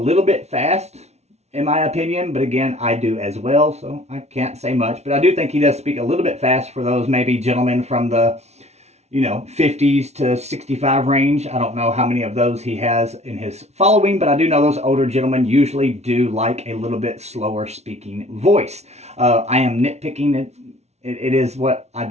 bit fast, in my opinion, but again, I do as well, so I can't say much. But I do think he does speak a little bit fast for those maybe gentlemen from the, 50s to 65 range. I don't know how many of those he has in his following, but I do know those older gentlemen usually do like a little bit slower speaking voice. I am nitpicking it. It is what I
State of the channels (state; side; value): late; left; 0.31 ms